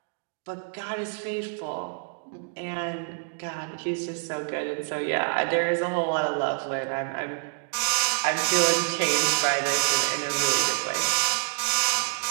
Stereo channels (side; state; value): left; silent; digital silence